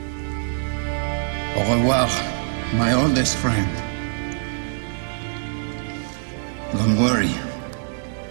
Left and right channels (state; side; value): silent; left; 63 dB below the other